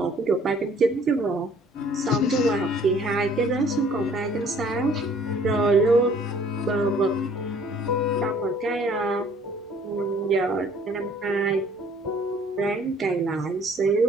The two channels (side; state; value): both; normal; correlation 0.56